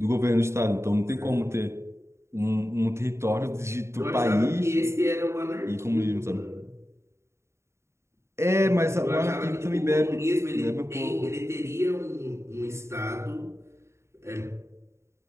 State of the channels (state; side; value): late; left; 0.13 ms